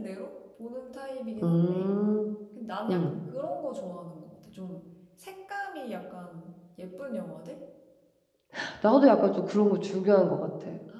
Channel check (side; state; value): both; identical; correlation 1.00